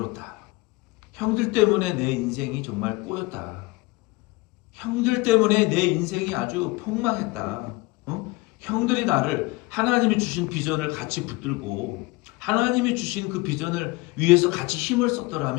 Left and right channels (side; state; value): right; quieter; 22.6 dB